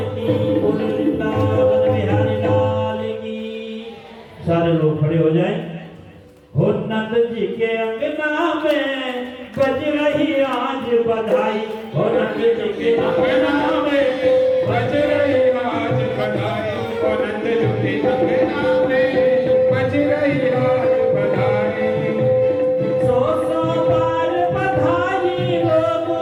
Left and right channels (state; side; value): identical; both; correlation 1.00